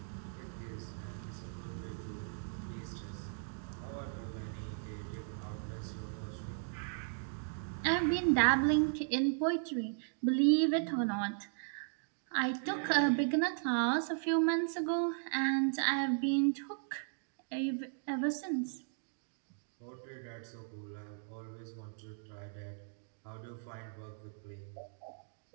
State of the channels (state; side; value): silent; left; digital silence